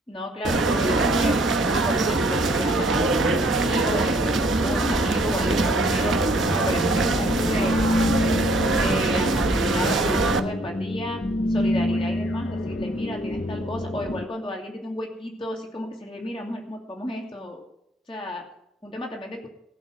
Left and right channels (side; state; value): both; normal; correlation 0.62